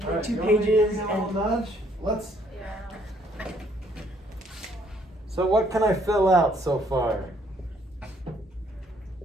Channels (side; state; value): both; normal; correlation 0.66